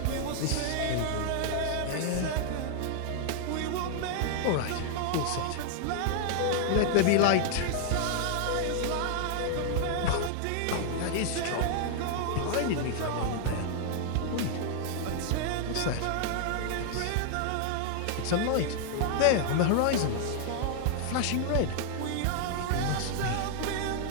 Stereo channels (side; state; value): both; different; correlation 0.00